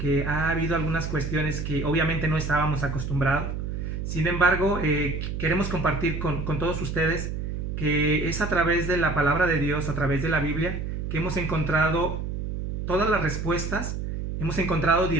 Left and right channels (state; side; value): noise; right; hum, 4 dB below the sound